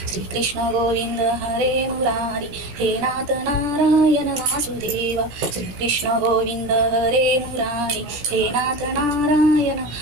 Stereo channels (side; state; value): left; late; 17 ms